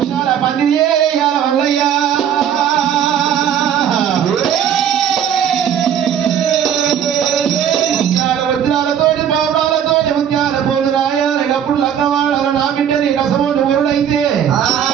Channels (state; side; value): quieter; left; 9.1 dB